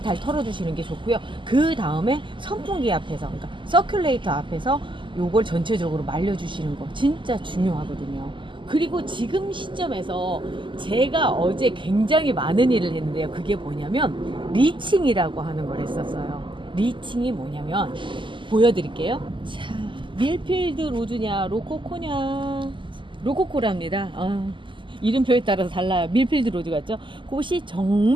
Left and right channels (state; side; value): late; left; 0.24 ms